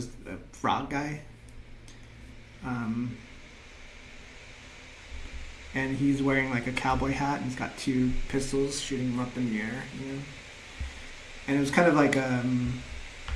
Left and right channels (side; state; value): both; identical; correlation 1.00